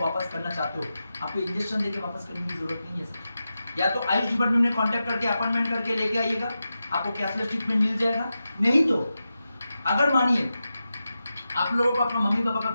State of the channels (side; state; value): both; inverted; correlation -0.91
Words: वापस करना चाहते हो, आपको इंजेक्शन देके वापस करने की जरूरत नहीं है सर। या तो आयुष डिपार्टमेंट में कांटेक्ट करके अपॉइंटमेंट करके लेके आइएगा, आपको कैशलेस ट्रीटमेंट मिल जाएगा। नहीं तो अगर मानिए आप लोगों को अपना मम्मी पापा का